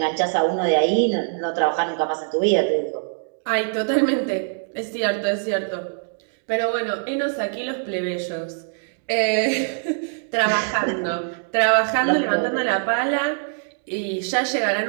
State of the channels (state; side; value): silent; left; digital silence